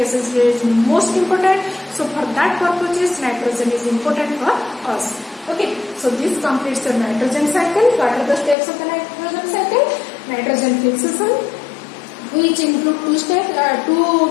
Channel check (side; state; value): right; drops out; at 8.6 s